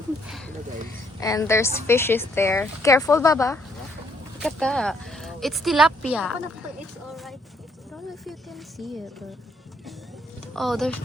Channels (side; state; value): both; normal; correlation 0.69